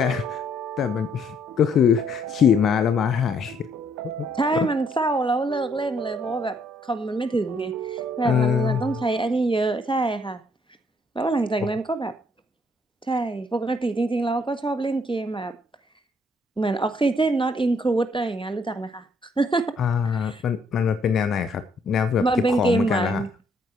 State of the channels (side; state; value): both; normal; correlation 0.68